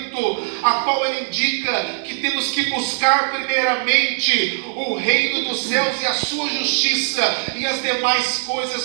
a qual ele indica que temos que buscar primeiramente o reino dos céus e a sua justiça, e as demais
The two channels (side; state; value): left; silent; digital silence